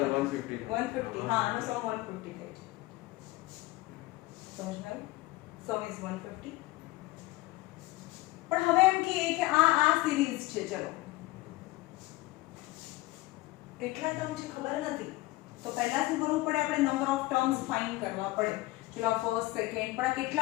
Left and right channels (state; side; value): quieter; right; 19.8 dB